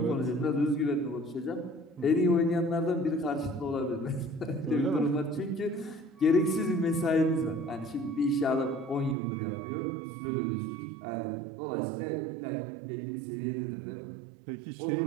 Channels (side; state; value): left; drops out; at 9.2 s